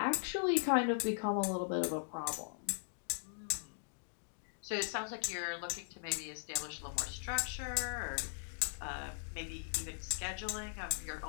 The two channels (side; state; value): right; silent; digital silence